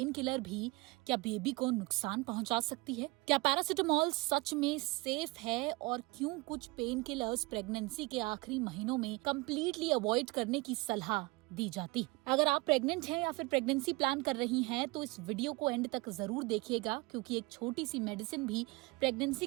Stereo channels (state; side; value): quieter; left; 24.3 dB